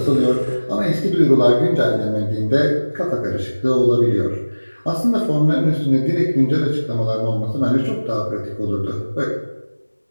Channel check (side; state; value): both; inverted; correlation -1.00